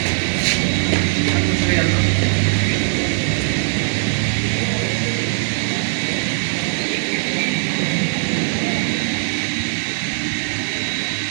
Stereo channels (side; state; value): left; silent; digital silence